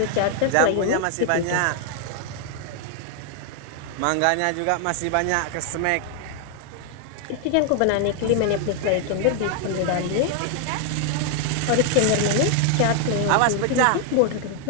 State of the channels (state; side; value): different; both; correlation 0.00